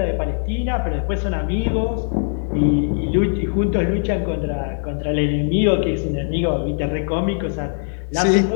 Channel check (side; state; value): right; silent; 65 dB below the other